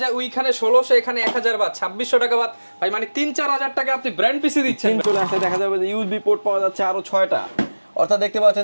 ওইখানে 1600 এখানে 1000 বাদ 2600 টাকা বাদ ভাই, মানে 3-4000 টাকা আপনি ব্র্যান্ড পিসি দিচ্ছেন। চলে আসলে দেখা যাবে যে ইউএসবি পোর্ট পাওয়া যাচ্ছে আরো 6টা, অর্থাৎ দেখতে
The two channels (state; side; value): inverted; both; correlation -1.00